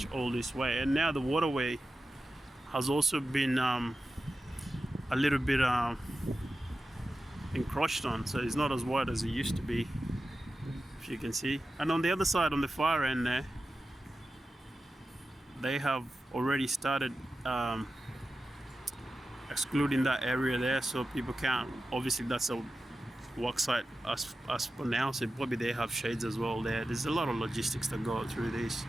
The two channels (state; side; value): normal; both; correlation 0.93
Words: all this way. And now the waterway has also been a little bit encroached on, so it's not as wide as it used to be, if you can see. And on the other side, on the far end there, they have already started excluding that area there, so people can't. Obviously that's a work site as for now, so probably they have shades as well there. There's a lot of logistics that go through this.